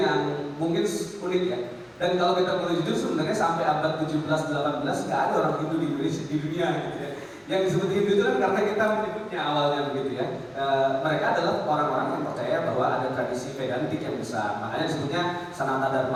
mungkin unik ya. Dan kalau kita boleh jujur sebenarnya sampai abad 17-18 nggak ada orang Hindu di Indonesia di dunia gitu ya. Yang disebut Hindu itu kan karena kita menyebutnya awalnya begitu ya. Mereka adalah orang-orang yang percaya bahwa ada tradisi Vedantik yang besar. Makanya disebutnya Sanata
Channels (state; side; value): identical; both; correlation 1.00